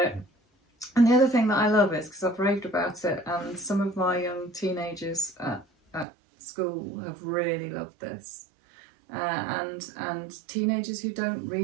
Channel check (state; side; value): drops out; left; at 6.1 s